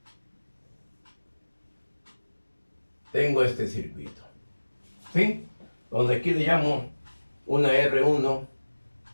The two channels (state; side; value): inverted; both; correlation -1.00